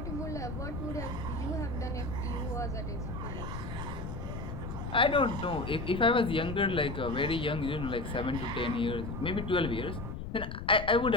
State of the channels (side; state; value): left; noise; rumble, 6 dB below the sound